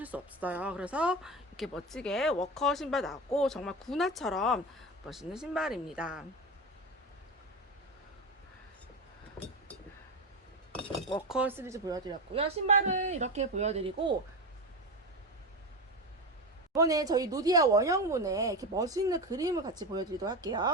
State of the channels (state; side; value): normal; both; correlation 0.20